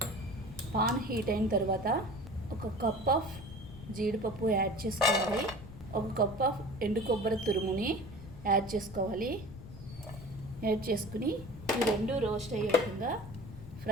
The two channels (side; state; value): left; noise; rumble, 14 dB below the sound